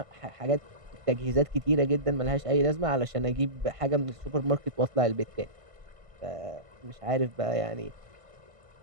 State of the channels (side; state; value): left; late; 1.5 ms